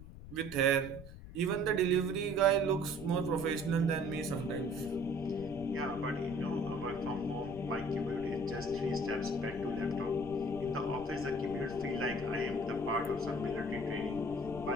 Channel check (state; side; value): noise; left; rumble, 14 dB below the sound